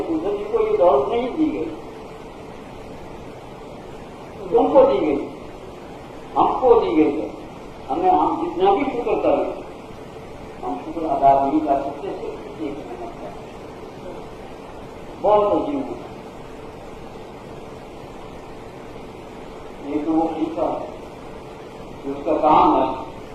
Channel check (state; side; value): identical; both; correlation 1.00